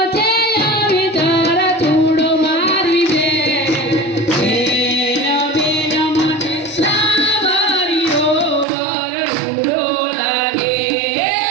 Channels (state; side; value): drops out; left; at 8.7 s